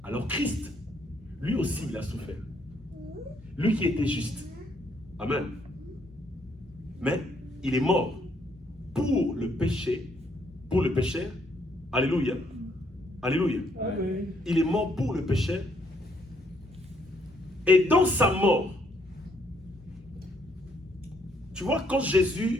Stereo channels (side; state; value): both; normal; correlation 0.70